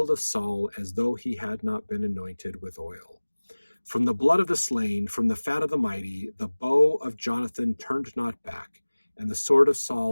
of Saul, as though he had not been anointed with oil. From the blood of the slain, from the fat of the mighty, the bow of Jonathan turned not back, and the sword of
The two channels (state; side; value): inverted; both; correlation -1.00